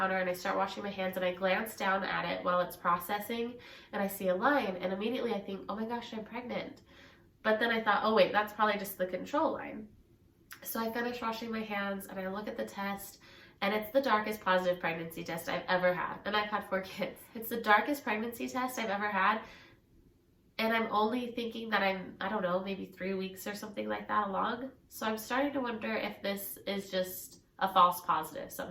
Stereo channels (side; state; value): both; identical; correlation 1.00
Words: and I start washing my hands, and I glance down at it while it's processing and I see a line, and immediately I think, oh my gosh, I'm pregnant. But then I thought, oh wait, that's probably just the control line. So I finish washing my hands and I look at the test, and it's the darkest positive pregnancy test I've ever had. And I've had 4 kids. It's the darkest pregnancy test I've ever had. And I'm only thinking that I'm, I don't know, maybe 3 weeks or something like that along. So I'm starting to wonder if this is just a false positive